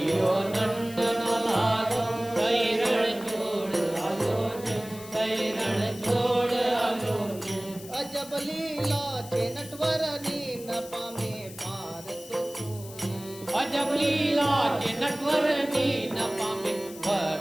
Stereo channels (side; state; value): left; noise; hiss, 16 dB below the sound